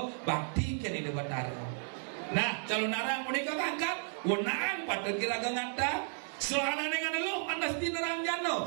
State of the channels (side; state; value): left; silent; 55 dB below the other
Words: bakti kini di Betara. Nah calon narang menikah angkat wenaan patut ragu ngata selana dengan lo andas di nerang